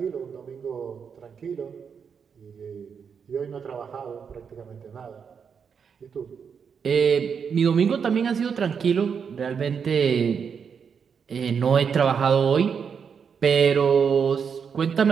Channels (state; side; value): quieter; left; 6.6 dB